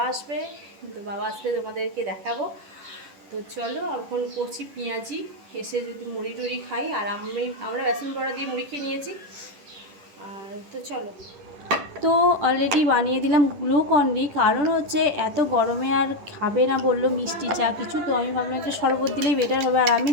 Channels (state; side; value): late; left; 10 ms